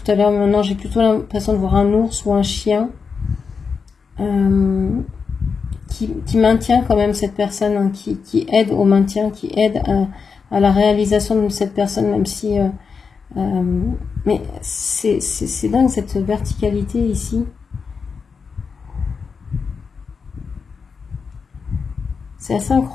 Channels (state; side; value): quieter; right; 5.5 dB